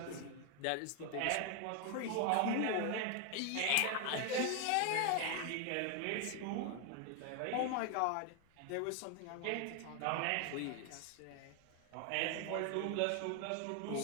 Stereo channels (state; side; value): different; both; correlation 0.01